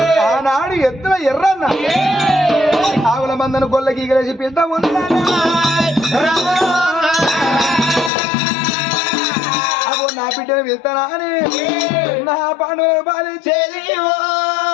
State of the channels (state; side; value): drops out; right; at 8.1 s